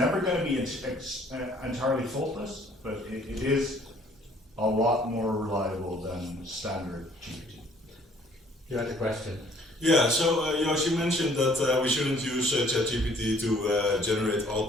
going to be entirely faultless, but it is a lot more reliable than standard GPT. You had a question. Yeah, so Joost, you mentioned that we shouldn't use ChatGPT to generate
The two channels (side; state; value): both; normal; correlation 0.59